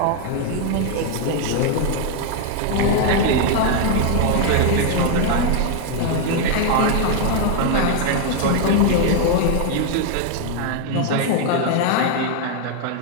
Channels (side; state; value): both; different; correlation 0.00